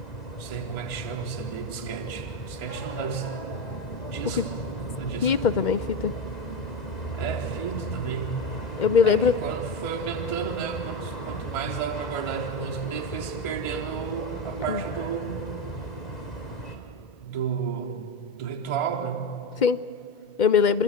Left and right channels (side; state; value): right; late; 1.3 ms